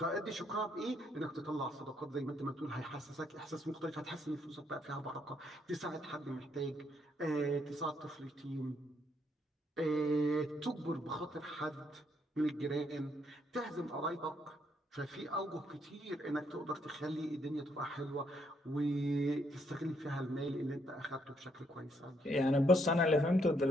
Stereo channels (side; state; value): both; normal; correlation 0.73